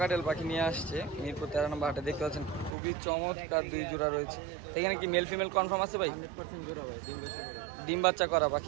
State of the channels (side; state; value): left; drops out; at 2.7 s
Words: পাখি নিয়ে আসছে মিরপুর 13 নম্বর হাটে। দেখতে পাচ্ছেন খুবই চমৎকার 2 জোড়া রয়েছে। এখানে কি মেল ফিমেল কনফার্ম আছে ভাই? 100% জোড়া ভাই, ডিম বাচ্চা করা